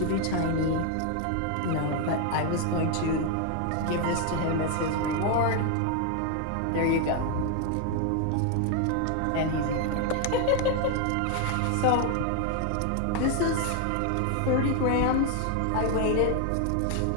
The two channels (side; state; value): both; different; correlation 0.00